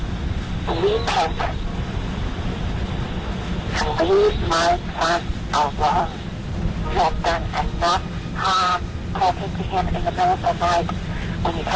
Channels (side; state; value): both; identical; correlation 1.00